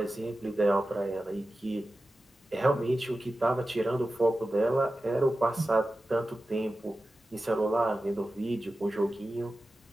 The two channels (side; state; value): both; normal; correlation 0.94